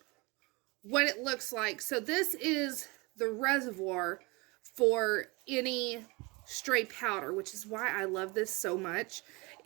what it looks like. So this is the reservoir for any stray powder, which is why I love this so much,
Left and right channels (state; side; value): quieter; left; 26.1 dB